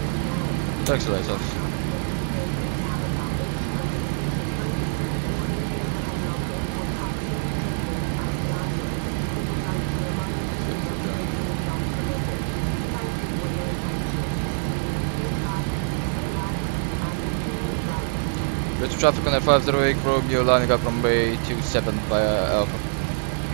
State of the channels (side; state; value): left; silent; digital silence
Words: Taxi lights off. Go to traffic on F508, Romeo lining up runway 27 via Alpha.